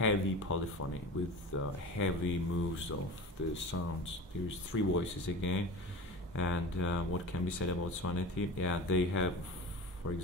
polyphony with heavy moves of the sounds. There's three voices again. And what can be said about Svaneti? Yeah, they have, for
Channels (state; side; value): normal; both; correlation 0.34